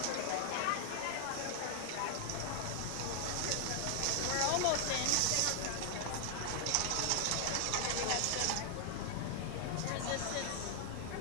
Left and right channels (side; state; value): both; different; correlation 0.00